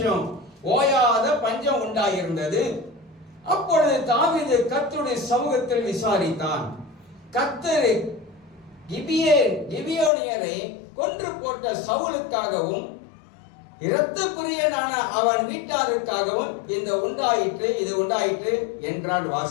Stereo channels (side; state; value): right; drops out; at 10.1 s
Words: ஓயாத பஞ்சம் உண்டாயிருந்தது. அப்பொழுது தாவீது கர்த்தருடைய சமூகத்தில் விசாரித்தான். கர்த்தர் கிபியோனியரை கொன்று போட்ட சவுலுக்காகவும் இரத்த பிரியனான அவன் வீட்டாருக்காகவும் இது உண்டாயிற்று என்றான்.